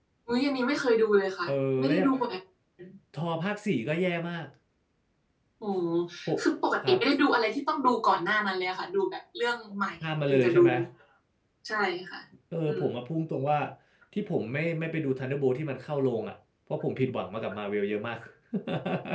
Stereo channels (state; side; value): identical; both; correlation 1.00